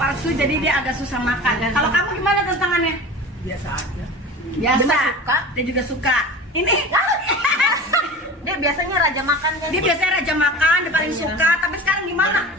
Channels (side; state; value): both; normal; correlation 0.35